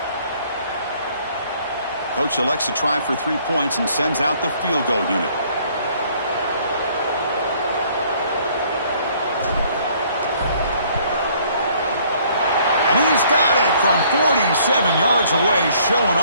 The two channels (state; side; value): inverted; both; correlation -0.61